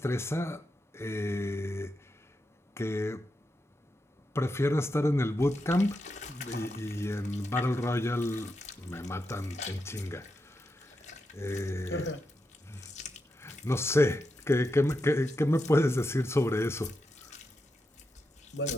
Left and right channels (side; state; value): both; normal; correlation 0.86